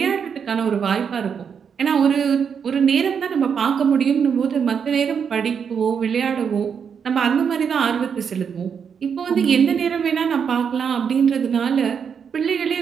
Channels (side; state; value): left; quieter; 6.9 dB